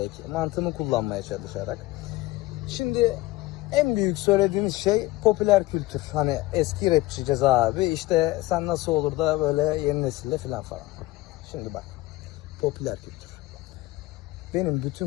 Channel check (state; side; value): quieter; right; 18.8 dB